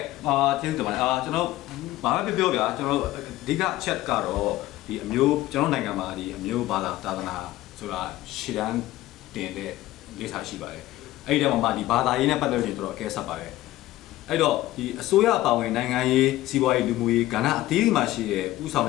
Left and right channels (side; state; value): right; quieter; 16.1 dB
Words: ကျေးဇူးတင်ပါတယ်ကျွန်တော်ဘာပဲပြောဗျာကျွန်တော်အဓိကအချက်ကတော့ဒီအမျိုးကျွန်တော်နိုင်ငံမှာဒီအမျိုးဘာသာသာသနာဆိုတာရှေ့တန်းတင်တဲ့လိပ်စာရှိပါတယ်အဲ့ဒီတော့မှဒီဘာသာရေးနဲ့ပတ်သက်လို့တော်တော်အကဲဆက်ပါတယ်အဲ့တော့ဒီအစိုးရအပါဝင်နိုင်ငံရေးစီးပွားရေးလူမှုရေးကဏ္ဍအသီးသီးမှာရှိတဲ့ဥဆောင်